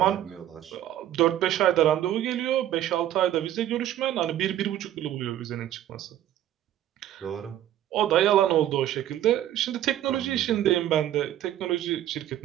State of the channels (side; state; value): left; quieter; 12.1 dB